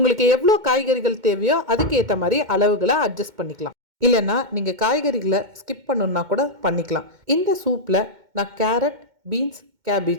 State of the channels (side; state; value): left; late; 2.1 ms